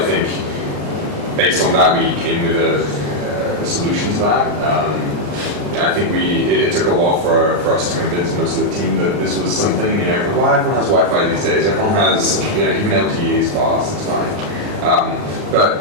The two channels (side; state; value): left; late; 39 ms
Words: think based on that, we came with a solution to that. I think it took a while for us to convince most of the team that this was something, well, everyone has Wi-Fi these days, everyone has, even LTE is fast, it's fine.